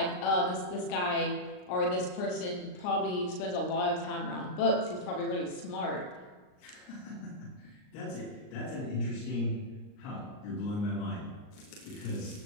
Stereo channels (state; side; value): late; right; 39 ms